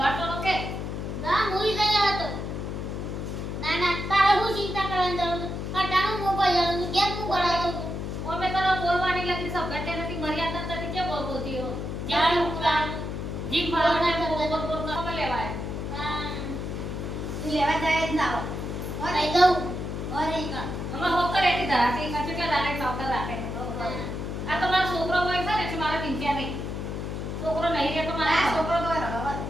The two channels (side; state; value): left; noise; hum, 4 dB below the sound